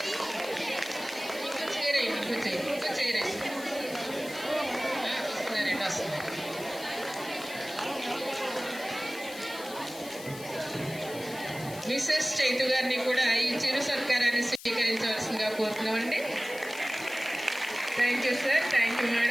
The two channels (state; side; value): noise; left; hiss, 15 dB below the sound